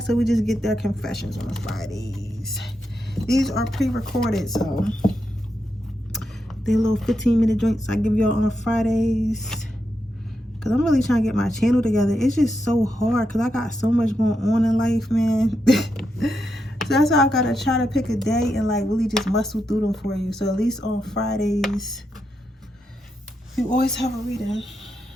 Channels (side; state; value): both; normal; correlation 0.84